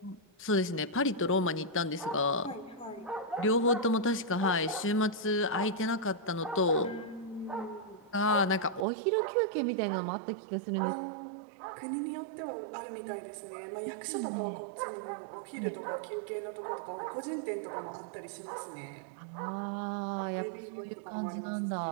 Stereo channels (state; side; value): drops out; left; at 8.8 s